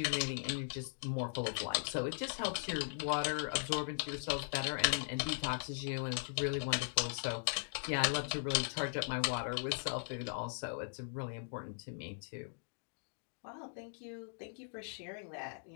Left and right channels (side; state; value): right; silent; digital silence